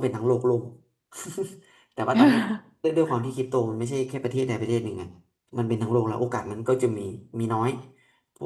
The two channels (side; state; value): both; identical; correlation 1.00